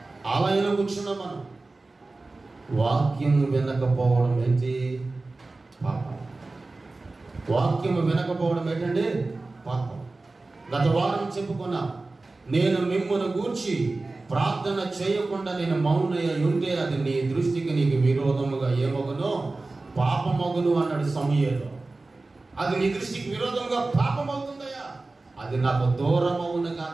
ఆలయంలో కూర్చున్నాం. మనం వాక్యం వినకపోవడం ఏంటి? పాపం. వాక్యం వినకపోవడం ఏంటండి? పాపం. గత వారం చెప్పుకున్నాం, నేను మిమ్మును గూర్చి ప్రార్థన చేయకుండా నేను మౌనయ్య ఉంటే అది నీ దృష్టికి నీకు విరోధముగా ఏమగునో పాపమగును అన్నాడు సమూయేలు. అది నీ దృష్టికి విరోధంగా పాపం అవుతుందయ్యా, అది నాకు దూరం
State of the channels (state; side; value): quieter; left; 3.3 dB